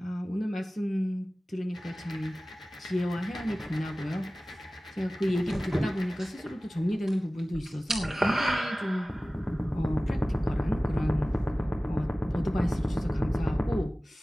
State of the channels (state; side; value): normal; both; correlation 0.97